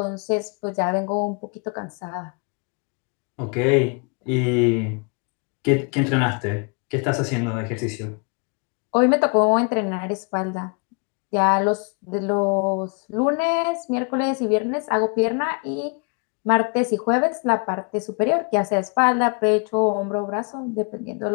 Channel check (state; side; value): quieter; right; 35.4 dB